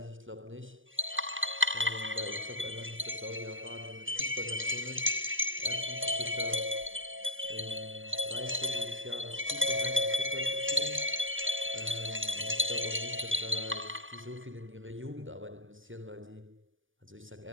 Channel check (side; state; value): left; late; 0.57 ms